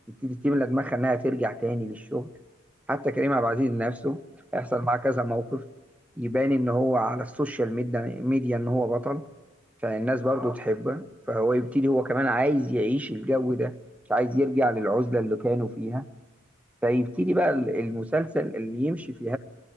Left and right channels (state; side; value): normal; both; correlation 0.88